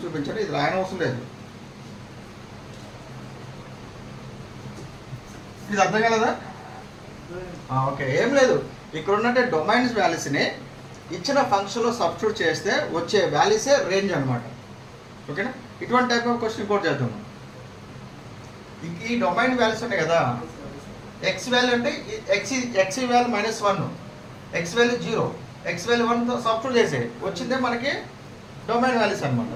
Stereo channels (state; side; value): identical; both; correlation 1.00